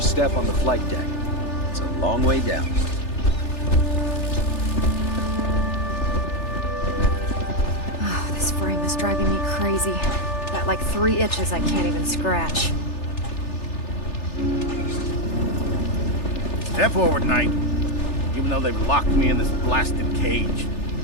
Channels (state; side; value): late; right; 3.4 ms